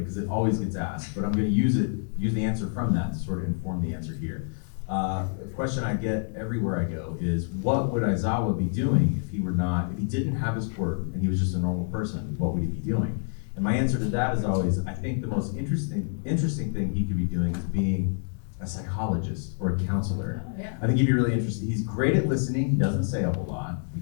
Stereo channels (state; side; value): silent; right; 60 dB below the other